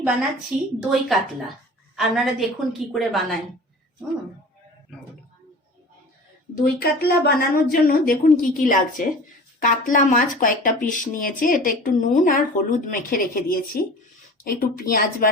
বানাচ্ছি দই কাতলা। আপনারা দেখুন কি করে বানাই। দই কাতলা বানানোর জন্য দেখুন কি কি লাগছে। কাতলা মাছ কয়েকটা পিস নিয়েছি, এটা একটু নুন আর হলুদ মেখে রেখে দিয়েছি। একটু পেঁয়াজ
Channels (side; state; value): both; normal; correlation 0.39